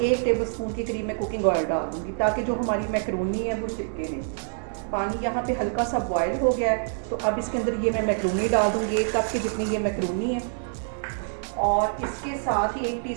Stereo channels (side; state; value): left; silent; digital silence